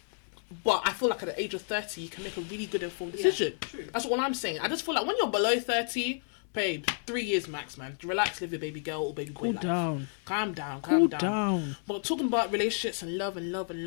But I feel like at the age of 30, you can make a really good informed decision. True. That's what I'm saying. I just feel like when you're below 30, babe, 3 years max, man. Relax, live your baby girl or baby boy life. Calm down. Cool down. But talking about relationships and love,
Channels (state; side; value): silent; right; 57 dB below the other